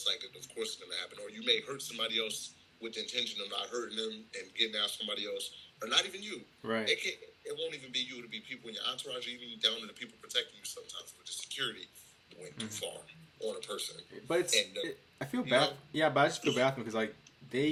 like, of course, it's going to happen. Or you may hurt somebody else with the intention of not hurting them and getting at somebody else, or not even you. Right. It won't even be you. It'll be people in your entourage, even down to the people protecting you sometimes. But the security went too Mm-hmm. far on a person. But And, I feel you bad. know, Yeah, but I just feel bad because like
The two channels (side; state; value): both; identical; correlation 1.00